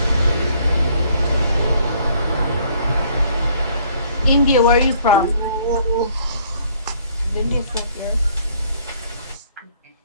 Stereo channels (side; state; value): both; inverted; correlation -0.62